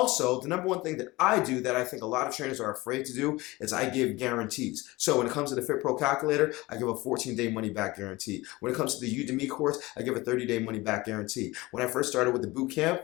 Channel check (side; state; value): right; quieter; 21.0 dB